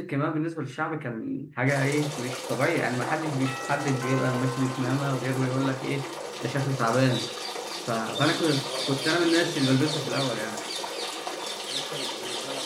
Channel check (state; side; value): identical; both; correlation 1.00